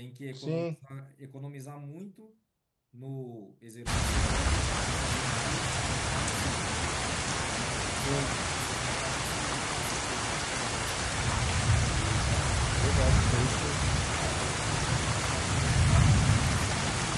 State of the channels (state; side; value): identical; both; correlation 1.00